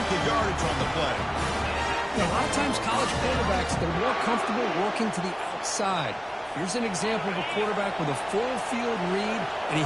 of yardage on the play. A lot of times college quarterbacks, they're more comfortable working to the outside. Here's an example of a quarterback with a full field read, and he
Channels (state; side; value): identical; both; correlation 1.00